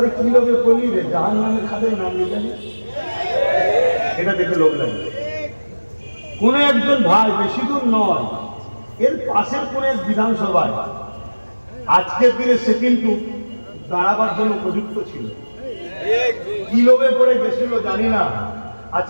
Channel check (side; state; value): both; inverted; correlation -1.00